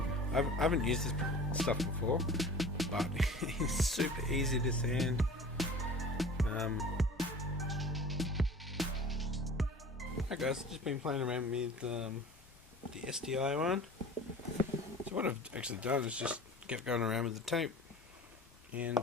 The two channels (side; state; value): both; normal; correlation 0.41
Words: I haven't used this stuff before, but it's super easy to sand. Alright guys, just been playing around with the STI one. So what I've actually done is just kept going around with the tape, and